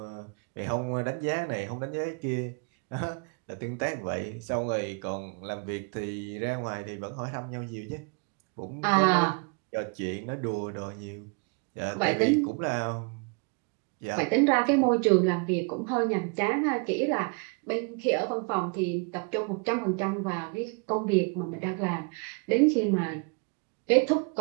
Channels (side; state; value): left; quieter; 34.9 dB